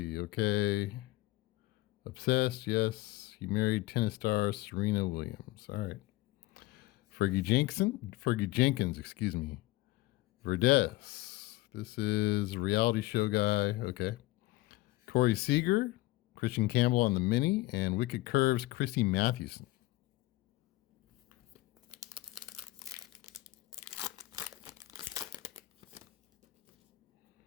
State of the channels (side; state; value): right; quieter; 18.3 dB